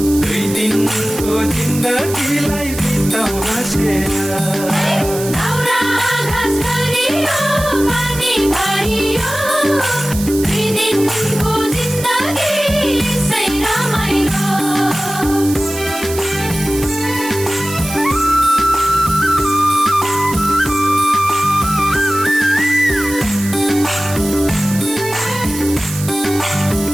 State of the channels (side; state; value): right; noise; hiss, 10 dB below the sound